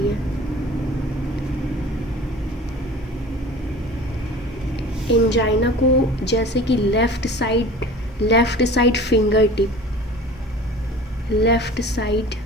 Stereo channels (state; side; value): normal; both; correlation 0.42